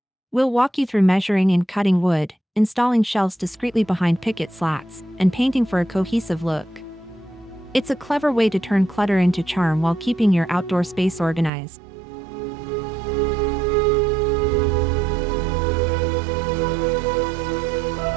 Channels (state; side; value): drops out; left; at 11.5 s